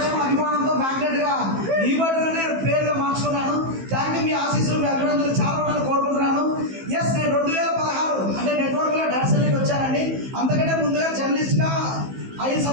అభిమానంతో మ్యాగ్నెట్ గా ఈ బట్టనే పేరుగా మార్చుకున్నాను. Thank you. మీ ఆశీస్సులు మీ అభినందనలు చాలా ఉండాలని కోరుకుంటున్నాను. ఎస్, నేను 2016 అంటే నెట్వర్క్ లో డాన్సర్కి వచ్చానండి. అంతకంటే ముందుగా జర్నలిస్ట్ గా 5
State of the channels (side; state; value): left; late; 15 ms